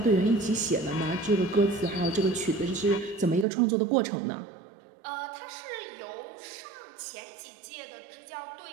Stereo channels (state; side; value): drops out; left; at 3.5 s